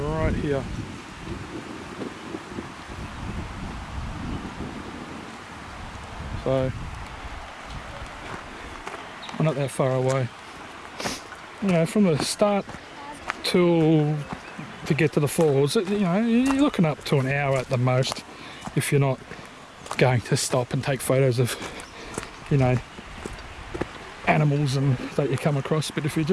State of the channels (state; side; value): identical; both; correlation 1.00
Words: here. So we're not that far away. You know, from the start to get to the falls, you know, you're looking up to an hour at the most if you're not going to stop and take photos of, you know, animals and that you come across. But if you're